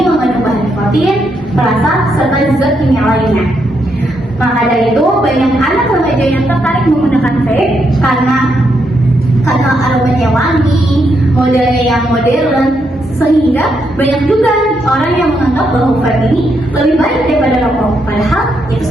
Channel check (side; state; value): both; normal; correlation 0.79